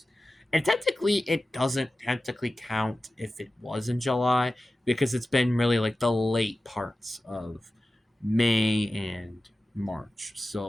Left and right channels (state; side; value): normal; both; correlation 0.94